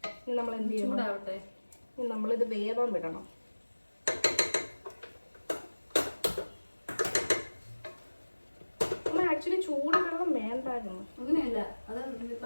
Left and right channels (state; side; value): inverted; both; correlation -1.00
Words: ഇനി നമ്മൾ എന്ത് ചെയ്യണം? ചൂടാവട്ടെ. ഇനി നമ്മളിത് വേവാൻ വിടണം. ആക്ച്വലി ചൂട് വെള്ളം വേണ്ടായിരുന്നു. അങ്ങനെയല്ല, അത്